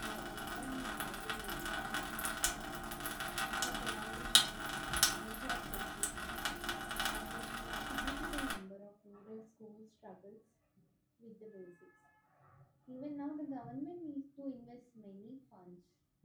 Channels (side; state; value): both; identical; correlation 1.00